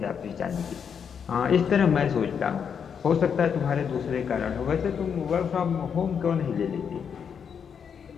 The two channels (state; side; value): quieter; right; 7.1 dB